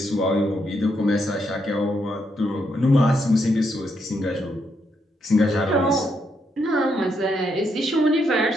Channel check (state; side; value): normal; both; correlation 0.78